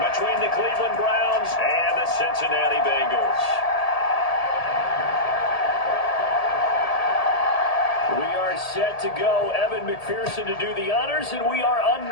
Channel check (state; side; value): late; right; 1.8 ms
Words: the Cleveland Browns and the Cincinnati Bengals. We are set to go. Evan McPherson to do the honors, and we are